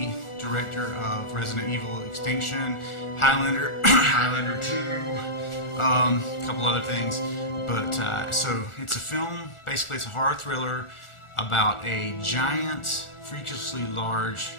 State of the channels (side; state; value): right; late; 1.4 ms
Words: director of Resident Evil Extinction, Highlander, Highlander 2, a couple other things. But so it's a film, basically it's a horror thriller about a giant, freakishly large